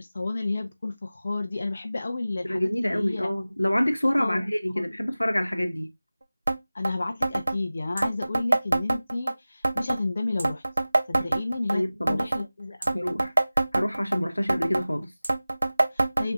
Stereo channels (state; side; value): inverted; both; correlation -0.97